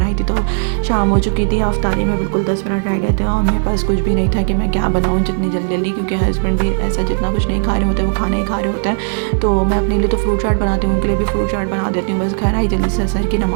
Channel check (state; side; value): silent; left; digital silence